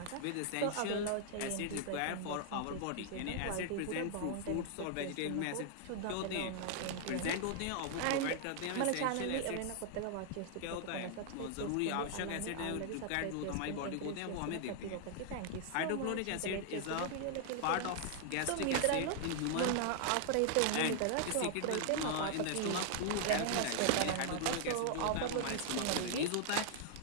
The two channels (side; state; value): both; different; correlation 0.00